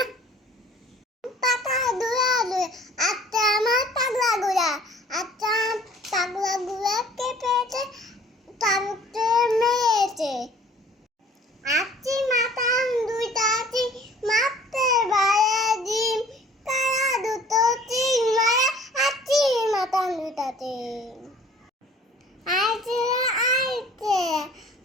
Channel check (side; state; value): both; normal; correlation 0.52